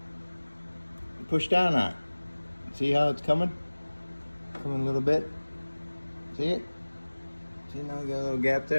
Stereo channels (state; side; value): inverted; both; correlation -1.00